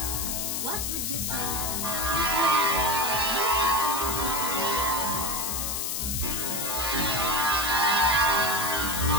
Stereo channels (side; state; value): left; noise; hiss, 1 dB below the sound